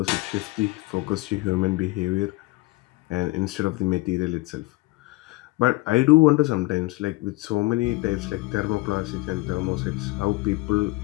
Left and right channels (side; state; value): right; quieter; 21.2 dB